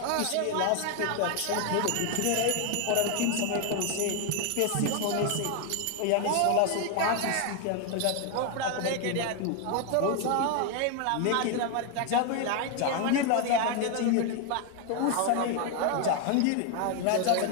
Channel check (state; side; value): different; both; correlation 0.01